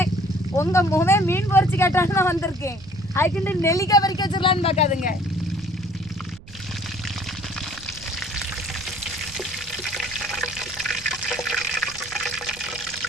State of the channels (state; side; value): noise; right; rumble, 20 dB below the sound